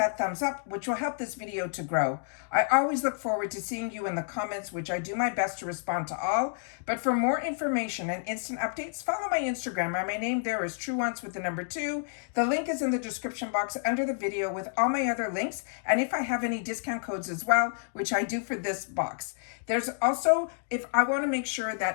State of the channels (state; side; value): silent; right; digital silence